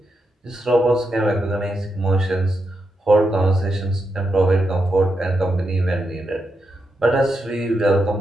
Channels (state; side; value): normal; both; correlation 0.85